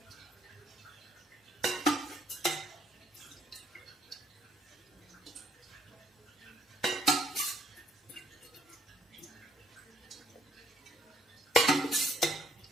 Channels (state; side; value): normal; both; correlation 0.66